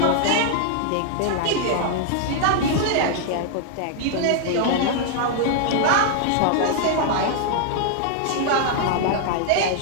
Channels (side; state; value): both; different; correlation 0.00